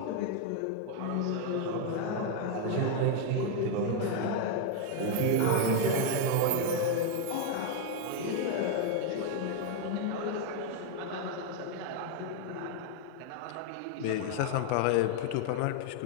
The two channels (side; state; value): both; different; correlation 0.01